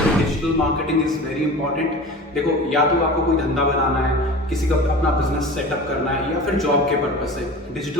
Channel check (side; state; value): both; normal; correlation 0.36